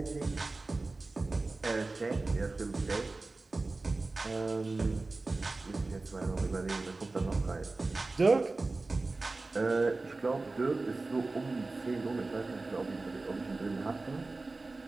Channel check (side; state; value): left; quieter; 3.4 dB